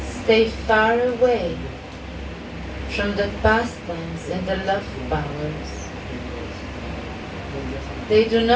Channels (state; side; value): identical; both; correlation 1.00